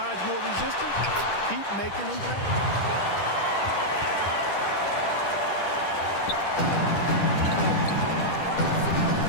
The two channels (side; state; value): right; late; 10 ms